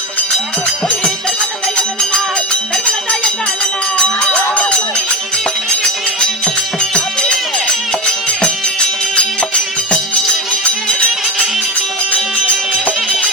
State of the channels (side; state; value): both; normal; correlation 0.19